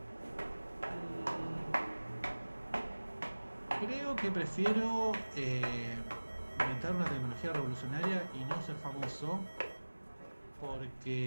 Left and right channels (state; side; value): inverted; both; correlation -1.00